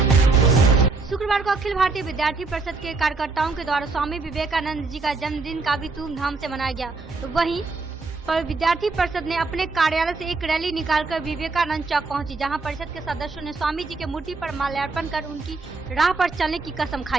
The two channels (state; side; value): quieter; left; 3.9 dB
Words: शुक्रवार को अखिल भारतीय विद्यार्थी परिषद के कार्यकर्ताओं के द्वारा स्वामी विवेकानंद जी का जन्मदिन काफी धूमधाम से मनाया गया, तो वहीं पर विद्यार्थी परिषद ने अपने कार्यालय से एक रैली निकालकर विवेकानंद चौक पहुंची, जहां परिषद के सदस्यों ने स्वामी जी के मूर्ति पर माल्यार्पण कर उनकी राह पर चलने की कसम